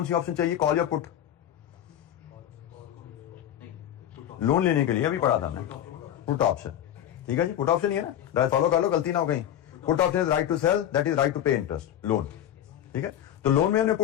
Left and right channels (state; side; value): quieter; right; 11.1 dB